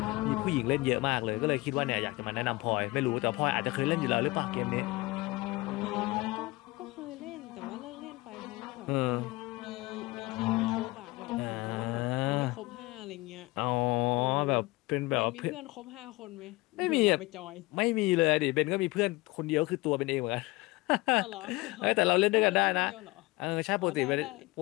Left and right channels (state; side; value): quieter; right; 22.0 dB